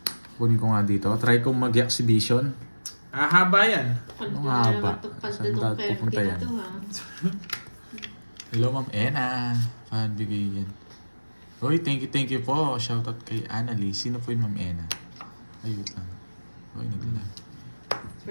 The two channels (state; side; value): inverted; both; correlation -1.00